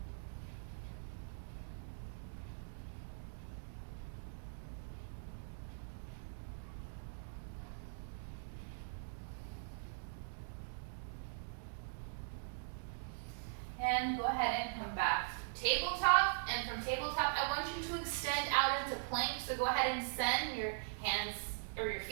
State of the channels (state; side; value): silent; left; digital silence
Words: And go ahead and come back. Tabletop, and from tabletop, I want you to extend out into plank. So go ahead and send your hands or your